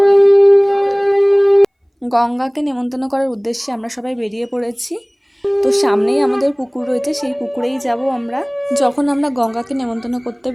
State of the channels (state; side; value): identical; both; correlation 1.00